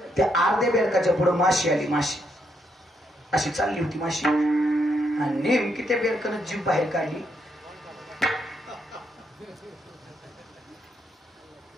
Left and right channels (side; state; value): both; normal; correlation 0.77